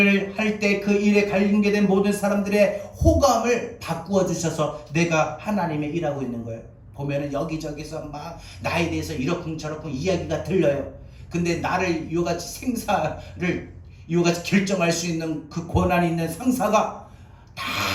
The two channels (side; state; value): both; identical; correlation 1.00